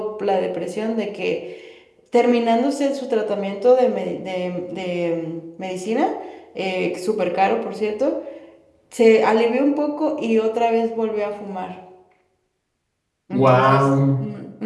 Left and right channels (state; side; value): identical; both; correlation 1.00